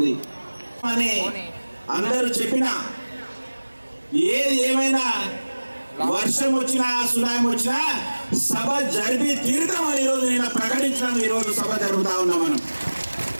అని అందరూ చెప్పినా, ఏది ఏమైనా వర్షం వచ్చినా, సునామీ వచ్చినా సభ జరిపి తీరుతామని ఈరోజు నేను ప్రకటించినాను. ఈరోజు సభ జరుగుతా ఉన్నాం. మనం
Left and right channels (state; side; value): inverted; both; correlation -1.00